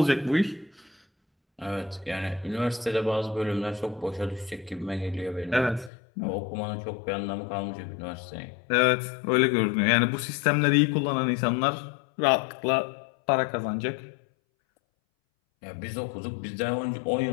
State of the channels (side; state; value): right; drops out; at 5.9 s